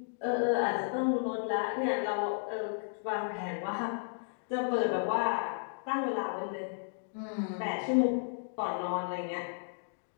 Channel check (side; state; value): right; silent; digital silence